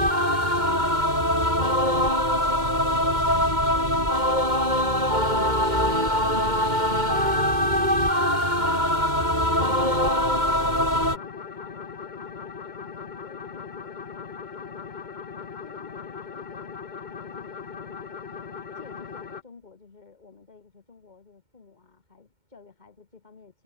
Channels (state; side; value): late; left; 2.1 ms